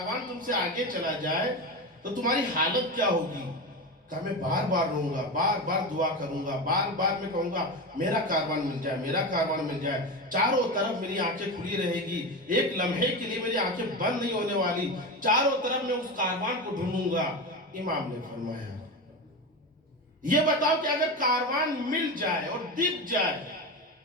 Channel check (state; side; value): normal; both; correlation 0.21